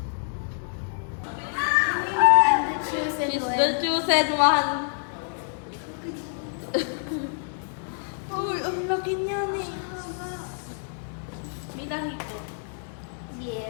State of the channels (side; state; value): right; silent; digital silence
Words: She's the chosen one. Uy, ang laki niya eh. May lahi ko.